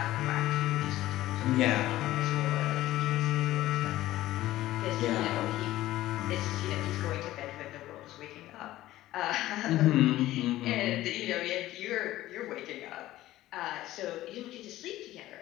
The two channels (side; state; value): right; quieter; 15.4 dB